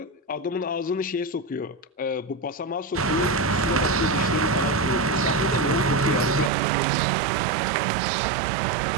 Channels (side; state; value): left; drops out; at 6.5 s